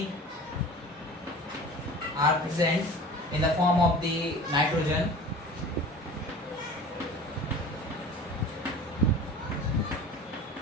are present in the form of the nitrogen.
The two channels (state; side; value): normal; both; correlation 0.39